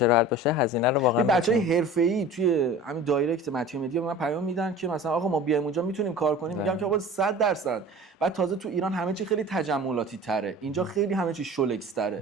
راحت باشه، هزینه رو واقعا بچهای حرفه‌ای توی همین دایرکت متیو مدیا به من پیام میدن که مثلا آقا ما بیایم اونجا میتونیم کار کنیم. میگم که آقا 100%. بعد تازه تو ایران همه چی خیلی تجملاتی تره، اینجا خیلی همه چی شولکس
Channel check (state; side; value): normal; both; correlation 0.40